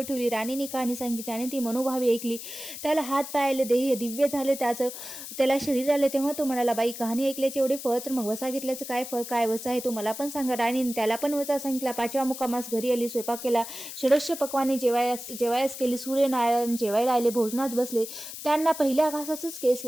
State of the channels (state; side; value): noise; left; hiss, 10 dB below the sound